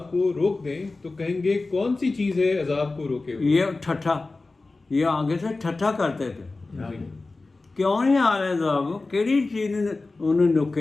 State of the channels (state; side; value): quieter; right; 3.5 dB